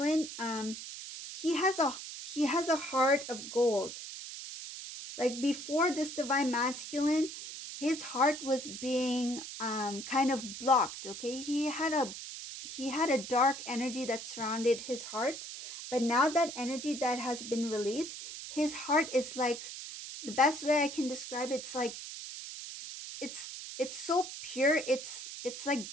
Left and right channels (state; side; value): noise; right; hiss, 9 dB below the sound